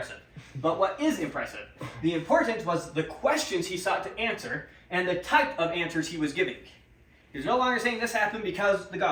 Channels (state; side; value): identical; both; correlation 1.00